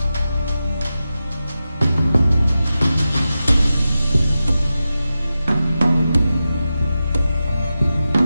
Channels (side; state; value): both; inverted; correlation -0.92